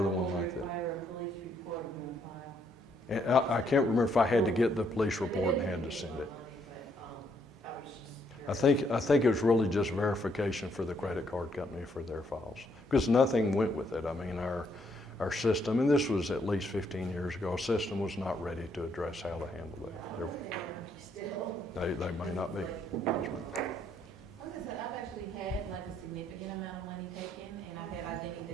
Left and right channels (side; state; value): both; normal; correlation 0.72